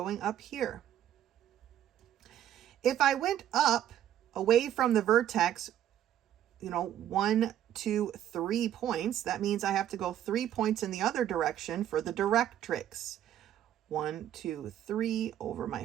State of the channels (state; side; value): quieter; left; 11.2 dB